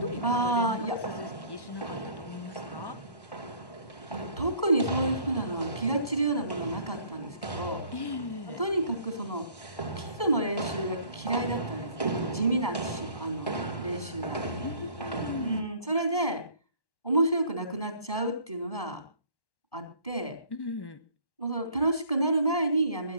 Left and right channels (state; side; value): late; right; 1.1 ms